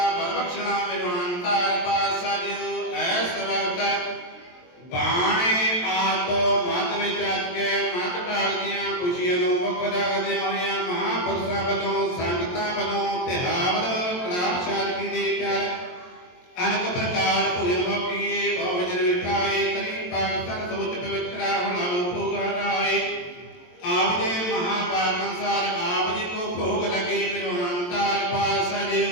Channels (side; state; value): right; late; 23 ms